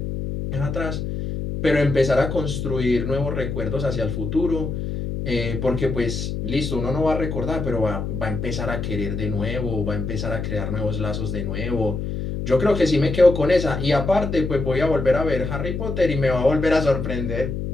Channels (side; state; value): left; noise; hum, 4 dB below the sound